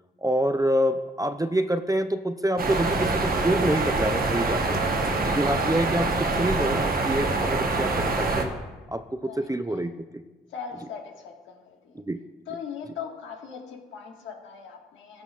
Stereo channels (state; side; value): normal; both; correlation 0.63